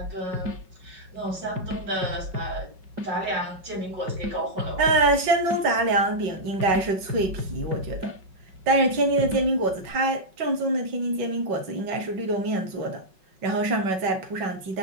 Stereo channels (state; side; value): late; left; 5.4 ms